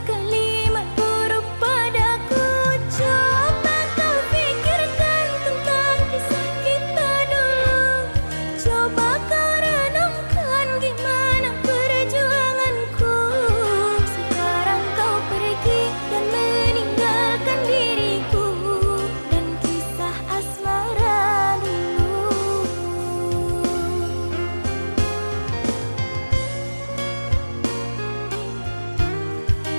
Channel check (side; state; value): both; inverted; correlation -1.00